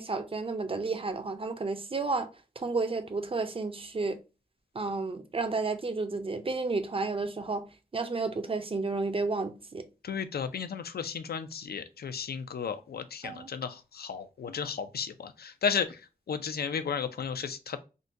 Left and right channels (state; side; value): normal; both; correlation 0.43